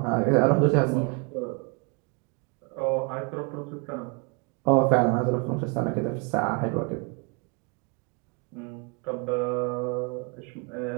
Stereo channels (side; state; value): left; quieter; 32.9 dB